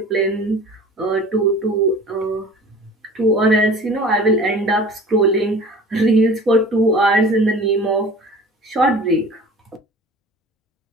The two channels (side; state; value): both; normal; correlation 0.43